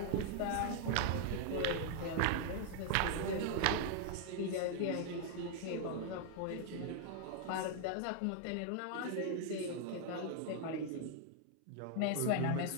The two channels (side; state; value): both; different; correlation 0.00